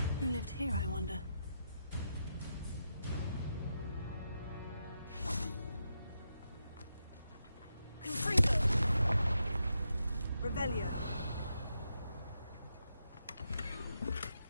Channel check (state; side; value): inverted; both; correlation -0.84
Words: Who lived here, I wonder? Confringo! Revelio!